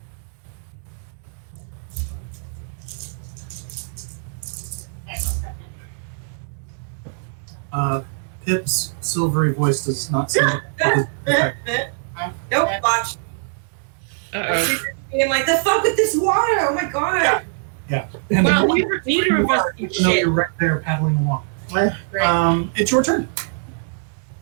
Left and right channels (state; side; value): silent; left; digital silence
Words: Pip's silvery voice does not seem to Nope, watch. Uh-oh. I'm like, the fuck with this water? Oh my god. Yeah. And Well, the neither of us do even though shit. you're right there paddling along. Right. It's your turn.